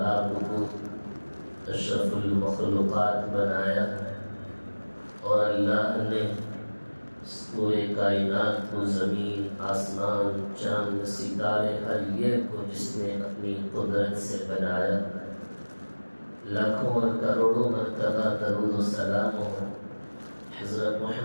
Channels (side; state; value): both; inverted; correlation -1.00